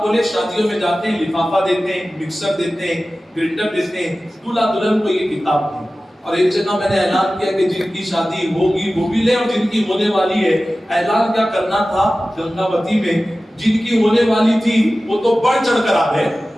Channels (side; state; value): both; normal; correlation 0.96